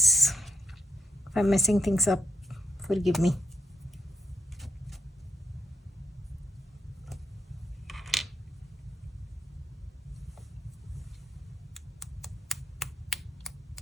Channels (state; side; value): normal; both; correlation 0.76